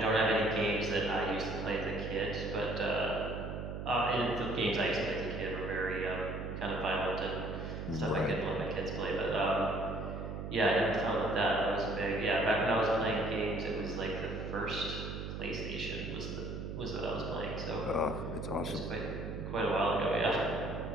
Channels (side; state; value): right; noise; hum, 6 dB below the sound